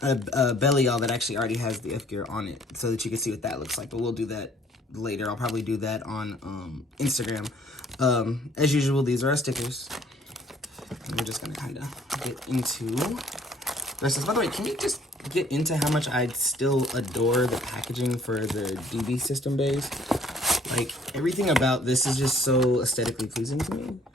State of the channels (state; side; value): normal; both; correlation 0.59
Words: belly all that actually already has the F-gear on it so that you can see what that looks like, but we'll do that later. I'll probably do that on Instagram. As usual, these are our stickers. And we're just gonna kind of get into this. By the way, can you just get into how much I still adore the packaging for the DB system base? Everything about this is just so aesthetically pleasing to me.